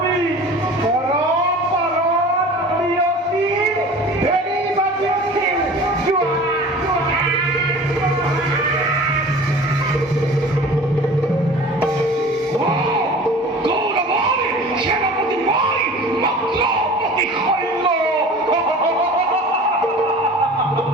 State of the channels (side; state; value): both; normal; correlation 0.41